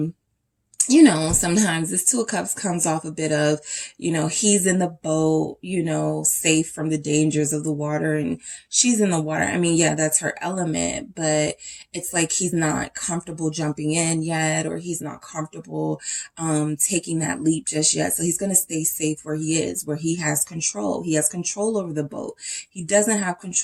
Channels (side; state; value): both; identical; correlation 1.00